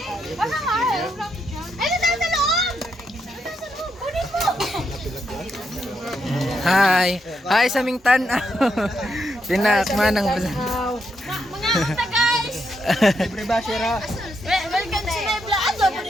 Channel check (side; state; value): both; normal; correlation 0.80